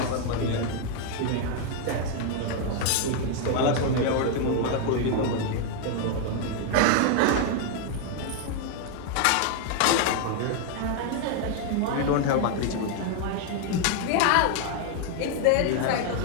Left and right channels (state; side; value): different; both; correlation 0.00